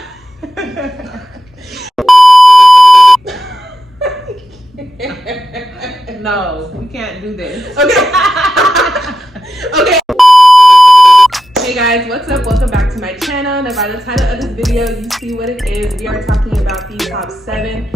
No, we can't do this. Okay. Okay. Hey guys, what's up? Welcome back to my channel. Now by the title of this video, you see what it is. We are talking about the top 7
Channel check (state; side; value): normal; both; correlation 0.89